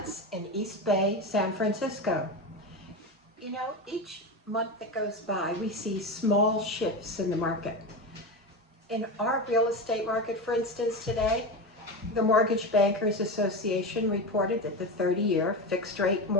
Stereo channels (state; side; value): normal; both; correlation 0.20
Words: in East Bay, San Francisco. You know, each month that goes by, we see small shifts in the market. In our real estate market, for instance, today, the Mortgage Bankers Association reported that the 30-year fixed-rate